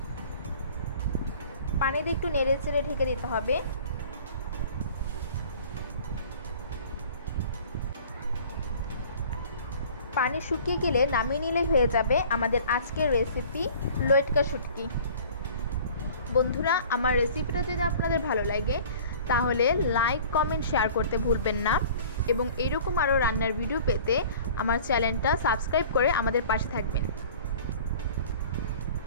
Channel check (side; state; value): both; inverted; correlation -0.46